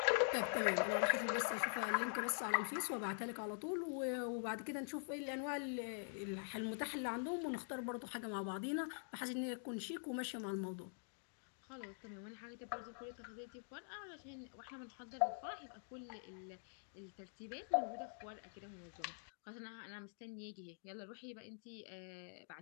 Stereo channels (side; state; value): right; silent; digital silence